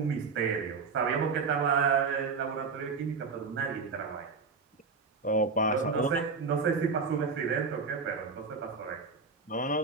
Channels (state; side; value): quieter; left; 4.8 dB